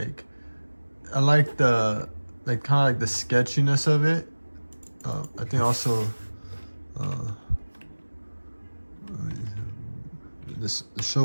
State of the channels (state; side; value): inverted; both; correlation -1.00